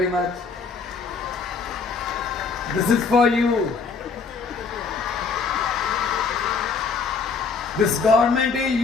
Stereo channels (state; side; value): quieter; right; 5.0 dB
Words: much. This is for you. This government is